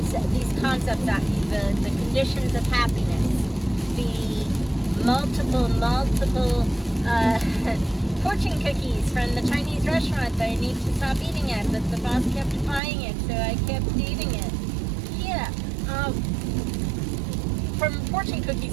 at me, the conditions of happiness, the multiple fortune cookies from the Chinese restaurant that I need to stop eating at, but the boss kept buying it, so I kept eating it. Yeah, from fortune cookies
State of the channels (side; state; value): left; drops out; at 12.8 s